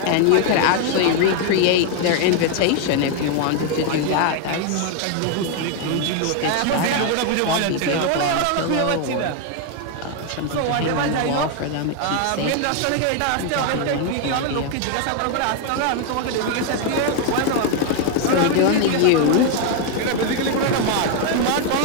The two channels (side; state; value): both; different; correlation 0.01